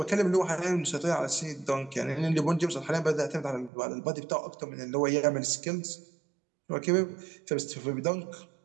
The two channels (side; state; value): left; drops out; at 3.7 s